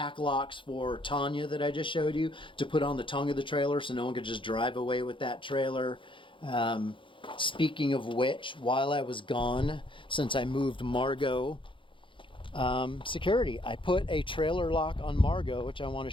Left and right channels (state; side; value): late; right; 0.25 ms